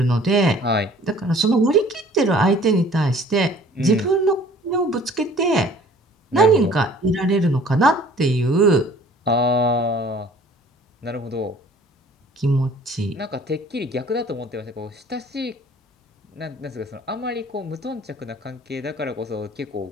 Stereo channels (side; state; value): both; normal; correlation 0.52